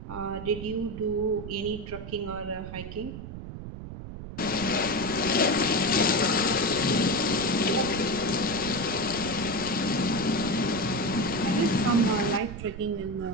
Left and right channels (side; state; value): right; noise; rumble, 10 dB below the sound